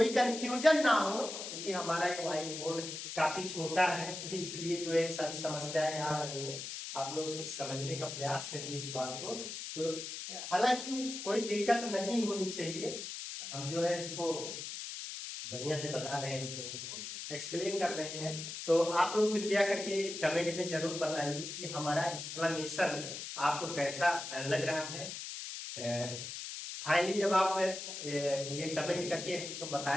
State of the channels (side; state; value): left; noise; hiss, 7 dB below the sound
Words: कंफ्यूजन ना हो, क्योंकि हमारा एक व्हाइट बोर्ड काफी छोटा है, तो इसलिए जो है सारी समस्याएं आ रही है। आप लोग समझने का प्रयास करिए इस बात को। तो हालांकि कोई दिक्कत नहीं होनी चाहिए, हम जो है इसको बढ़िया से बता रहे हैं, तो एक्सप्लेन कर रहे हैं। तो आप लोग कृपया करके कमेंट में जरूर बताइए कि हमारा एक्सप्लेनेशन आपको कैसा लग रहा है। फाइनली जब आप ये कमेंट करके तो